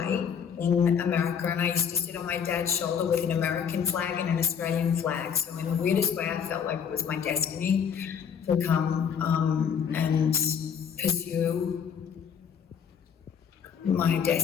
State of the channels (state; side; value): quieter; right; 7.4 dB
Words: in America, and I used to sit on my dad's shoulder with an American flag and an Australian flag. So in the weirdest way, I felt like it was my destiny to come and pursue my